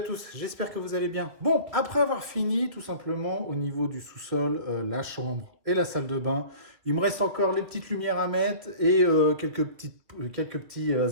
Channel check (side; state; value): left; late; 2.5 ms